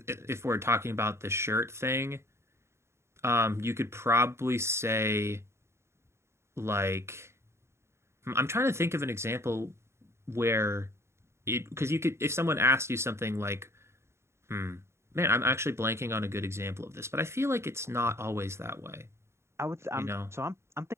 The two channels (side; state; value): left; late; 0.13 ms